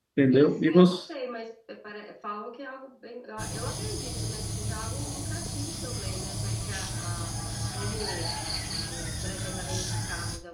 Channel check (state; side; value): identical; both; correlation 1.00